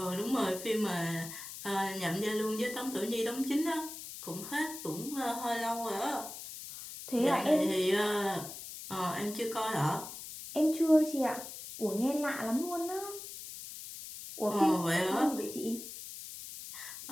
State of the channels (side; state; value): left; noise; hiss, 11 dB below the sound